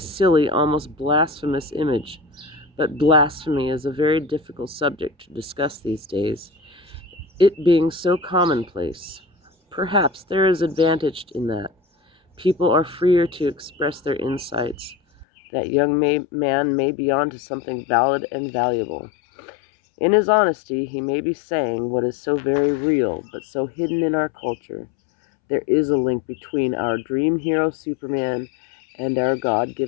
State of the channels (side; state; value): right; drops out; at 15.2 s